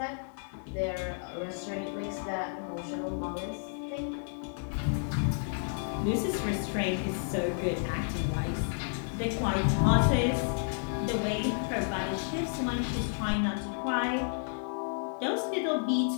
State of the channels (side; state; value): right; silent; digital silence